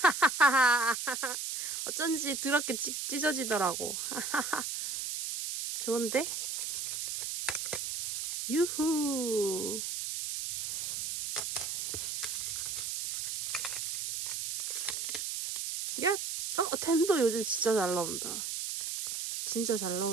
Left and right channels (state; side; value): noise; right; hiss, 3 dB below the sound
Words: 어쩐지 더럽게 찢어지더라고. 좋은데? 유후. 야! 텐도 요즘 진짜 잘 나온다. 진짜 잘